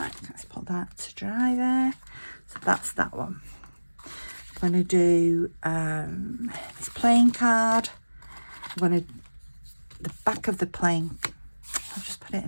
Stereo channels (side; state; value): both; inverted; correlation -1.00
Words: Let's put that to dry there. So that's that one. I'm going to do this playing card. I'm going to, the back of the playing, I'll just put it